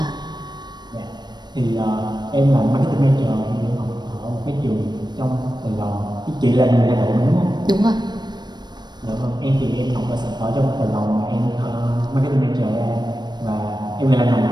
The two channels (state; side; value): late; left; 0.21 ms